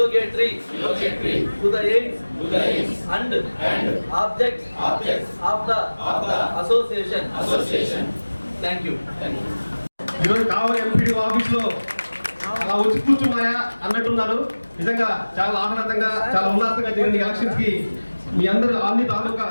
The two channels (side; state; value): both; inverted; correlation -1.00